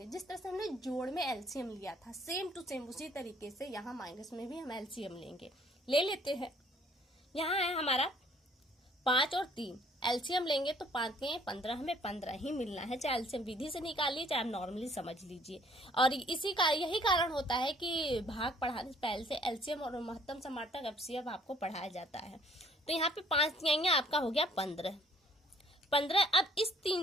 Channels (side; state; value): both; normal; correlation 0.61